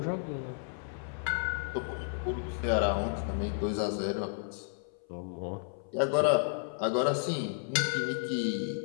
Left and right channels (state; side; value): silent; right; 55 dB below the other